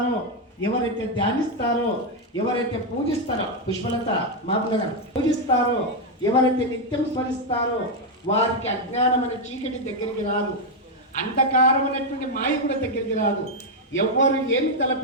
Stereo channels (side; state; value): both; normal; correlation 0.02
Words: ఎవరైతే ధ్యానిస్తారో, ఎవరైతే పూజిస్తారో, పుష్పలత మాపుల గారు పూజిస్తారో, ఎవరైతే నిత్యం స్మరిస్తారో వారికి అజ్ఞానం అనే చీకటి దగ్గరికి రాదు, అంధకారం అనేటువంటి మాయ కూడా దగ్గరికి రాదు. ఎవరు ఏమి